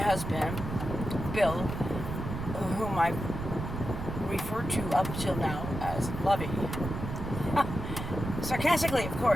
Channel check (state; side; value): noise; right; rumble, 6 dB below the sound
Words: Bill, whom I referred to up till now as Lovey. Sarcastically, of